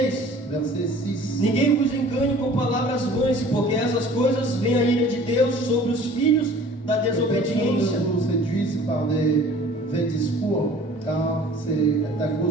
Verset 6. Ninguém vos engane com palavras vãs, porque essas coisas vêm a ira de Deus sobre os filhos da desobediência. Ne vous séduisent par des vains discours, car c'est à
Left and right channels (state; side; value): normal; both; correlation 0.48